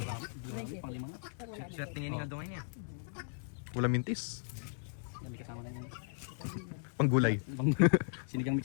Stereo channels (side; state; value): right; silent; digital silence